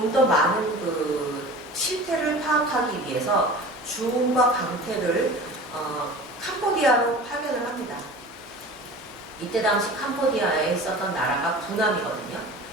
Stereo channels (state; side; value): normal; both; correlation 0.38